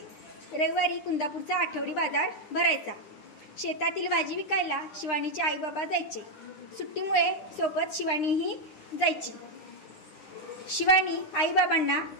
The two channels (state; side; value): late; right; 9.7 ms